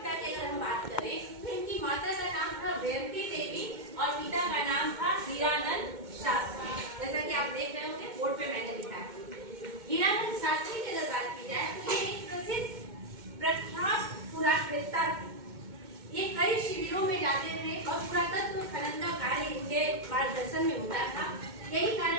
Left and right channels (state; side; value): late; left; 2.1 ms